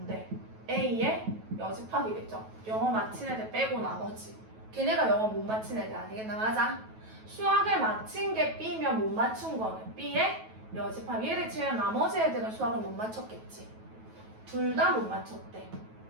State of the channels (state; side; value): late; left; 9.2 ms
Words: A의 여집합이겠죠. 영어 마친 애들 빼고 나머지. 걔네가 영어 못 마친 애들 아니겠나? 맞아? 수학을 마친 게 B면 못 맞춘 거는 B의 여집합. 얘를 제외한 나머지 애들은 수학을 못 맞췄겠지. 둘 다 못 맞췄대.